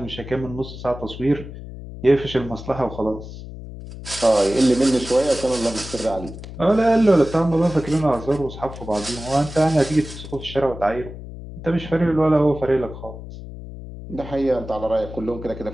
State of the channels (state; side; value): noise; left; hum, 12 dB below the sound